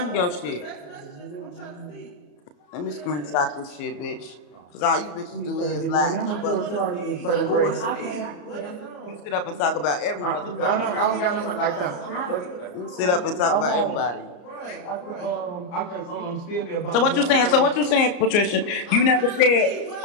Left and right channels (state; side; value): late; right; 34 ms